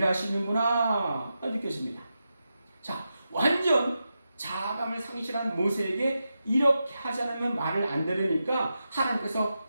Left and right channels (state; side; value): inverted; both; correlation -0.89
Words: 느껴집니다. 자, 완전 자아감을 상실한 모세에게 이렇게 하지 않으면 말을 안 들으니까 하나님께서